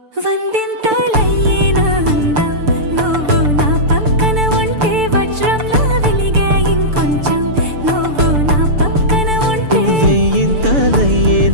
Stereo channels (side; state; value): left; late; 6.8 ms